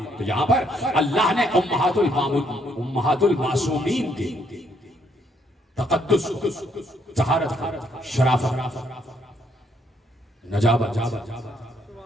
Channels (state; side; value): normal; both; correlation 0.71